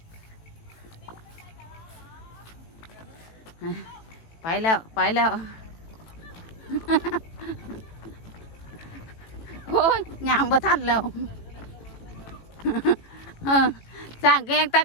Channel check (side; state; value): right; late; 18 ms